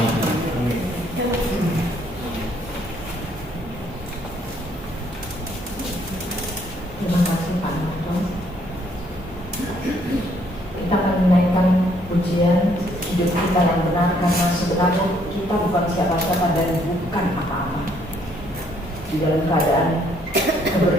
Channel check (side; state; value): both; normal; correlation 0.67